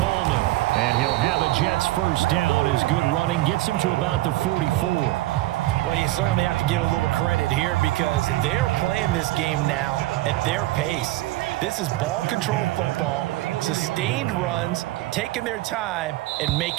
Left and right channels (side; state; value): left; quieter; 17.7 dB